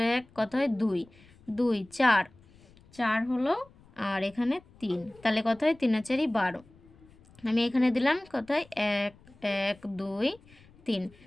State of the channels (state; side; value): noise; left; rumble, 27 dB below the sound